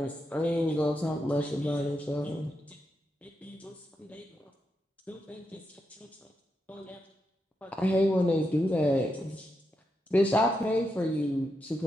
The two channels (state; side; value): normal; both; correlation 0.85